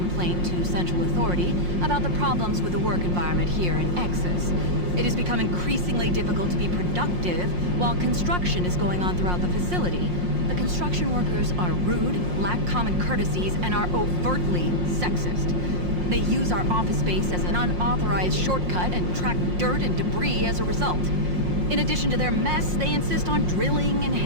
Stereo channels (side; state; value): left; late; 5.6 ms